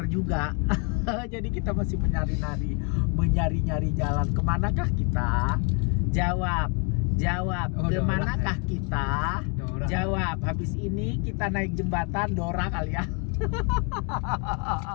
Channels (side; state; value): right; quieter; 36.2 dB